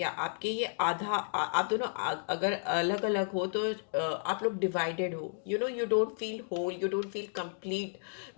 आपके ये आधा आप दोनों अगर अलग अलग हो तो आप लोग डिवाइडेड हो, you know, you don't feel whole, you don't feel complete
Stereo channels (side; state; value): right; silent; digital silence